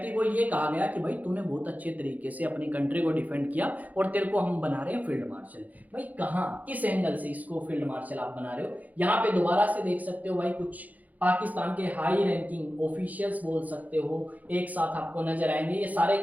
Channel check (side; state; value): left; late; 0.078 ms